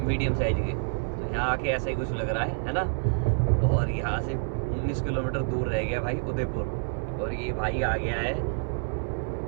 साइज के। यहाँ आके ऐसा ही कुछ लग रहा है ना। और यहाँ से 19 किलोमीटर दूर रह गया भाई उदयपुर। और ये भाई आ गया है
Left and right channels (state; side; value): silent; left; 57 dB below the other